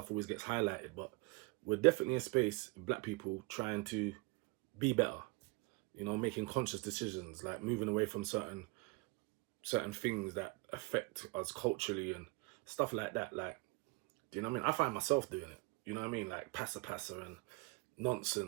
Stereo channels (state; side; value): quieter; left; 25.6 dB